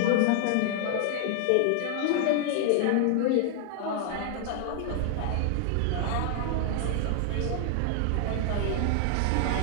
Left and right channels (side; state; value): both; different; correlation 0.00